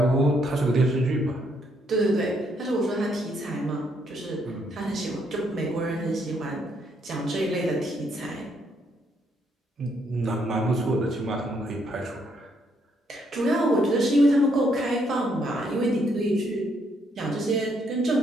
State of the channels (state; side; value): normal; both; correlation 0.73